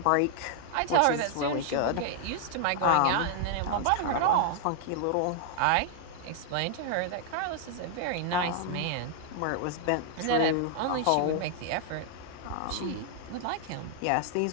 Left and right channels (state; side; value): different; both; correlation 0.00